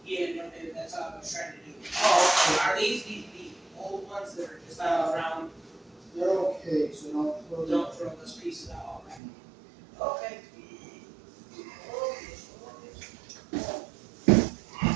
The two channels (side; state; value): left; drops out; at 9.2 s